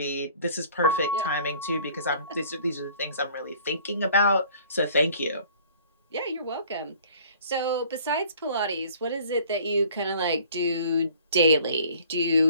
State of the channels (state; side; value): inverted; both; correlation -0.53